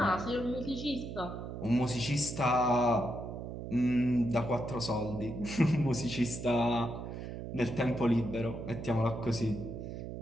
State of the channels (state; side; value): noise; right; hum, 8 dB below the sound